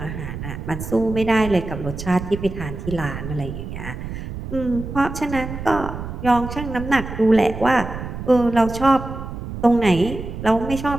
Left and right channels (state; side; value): noise; right; rumble, 8 dB below the sound